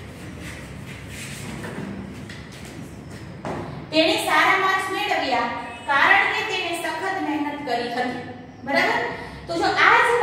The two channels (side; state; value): both; identical; correlation 1.00